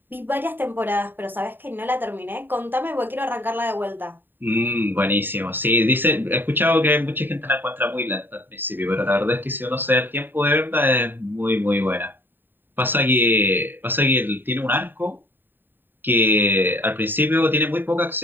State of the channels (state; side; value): late; left; 0.094 ms